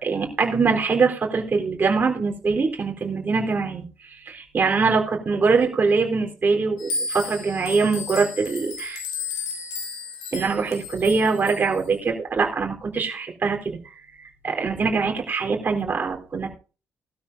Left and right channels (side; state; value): left; quieter; 4.0 dB